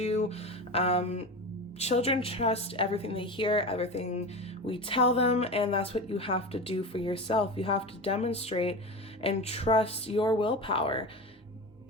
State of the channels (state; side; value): normal; both; correlation 0.26